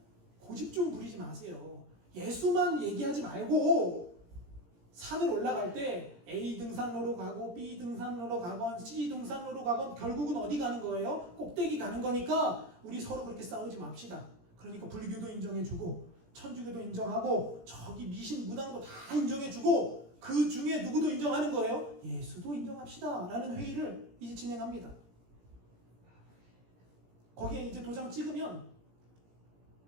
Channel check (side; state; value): left; late; 17 ms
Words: 고집 좀 부리지 마세요. 예수만 얘기하지 말고 산을 올라갈 때 A 등산로로 가고 B 등산로로 가건 C 등산로로 가건 결국은 어디 가는 거예요? 꼭대기 가는 거니까 우리 서로 그렇게 싸우지 맙시다. 그러니까 불교도 인정해주고 천주교도 인정하고 저기 미신 무당도 다 인정해주고 그 중에 누구도 인정하는 거예요? 예수도 인정합시다 라는 회의를 이제 진행합니다. 거기에 이제 도장 찍으면